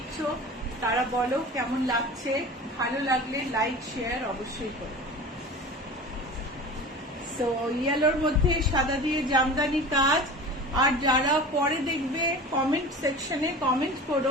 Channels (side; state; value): both; normal; correlation 0.36